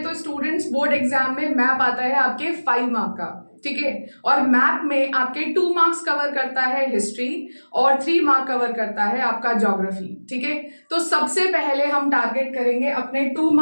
तो स्टूडेंट्स बोर्ड एग्जाम में मैप आता है आपके 5 मार्क का, ठीक है। और मैप में आपके 2 मार्क्स कवर करता है हिस्ट्री और 3 मार्क कवर करता है आपका ज्योग्राफी, ठीक है। तो सबसे पहले हम टारगेट करेंगे अपने 2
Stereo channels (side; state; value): both; inverted; correlation -1.00